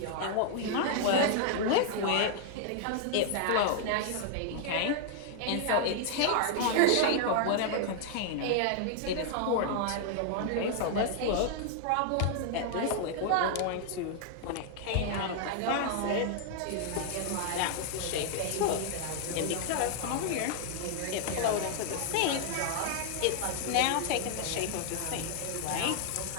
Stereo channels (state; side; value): different; both; correlation 0.00